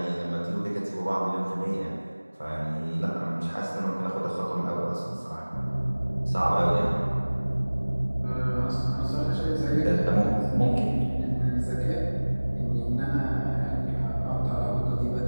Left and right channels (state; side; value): inverted; both; correlation -1.00